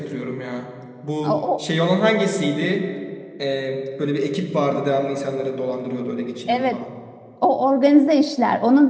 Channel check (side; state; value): both; identical; correlation 1.00